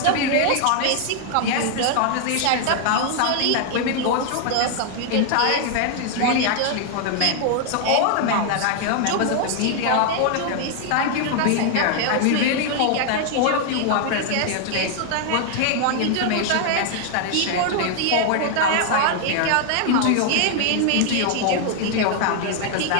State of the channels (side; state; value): both; different; correlation 0.00